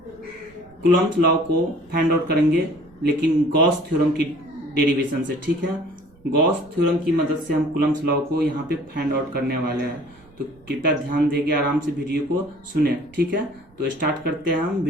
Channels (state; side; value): noise; right; rumble, 28 dB below the sound